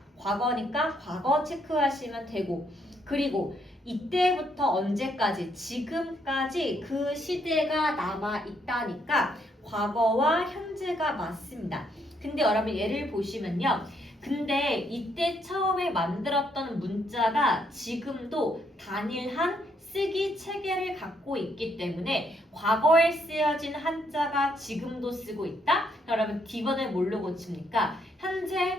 과거니까 과거 체크하시면 되고 그리고 이때부터 언제까지 지금까지 그 시대가 남아 있다니까 과거와 현재가 맞습니다. 근데 여러분 예를 보시면요. 근데 이때 처음에 만들었던 문자가 지금도 단일한 쓰기 체계를 갖고 있기 때문에 과거에 쓰여진 한자가 지금도 쓰고 있다? 여러분 D번을 뭘로 고칩니까?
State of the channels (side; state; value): both; normal; correlation 0.73